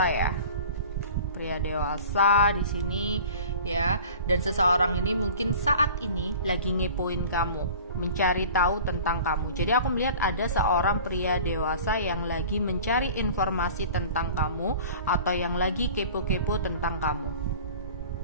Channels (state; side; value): inverted; both; correlation -0.42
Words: ya. Pria dewasa di sini ya, dan seseorang ini mungkin saat ini lagi ngepoin kamu, mencari tahu tentang kamu. Jadi aku melihat ada seorang pria dewasa yang lagi mencari informasi tentang kamu atau yang lagi kepo-kepo tentang kamu.